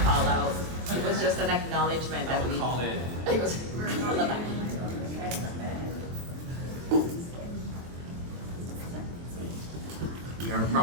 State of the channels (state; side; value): late; left; 23 ms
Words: out. It was just an acknowledgement that we call it. It was on the back. We are